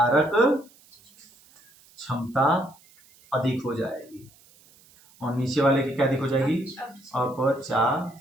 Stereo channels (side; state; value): right; noise; hiss, 28 dB below the sound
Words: क्षमता अधिक हो जाएगी, और नीचे वाले की क्या अधिक हो जाएगी?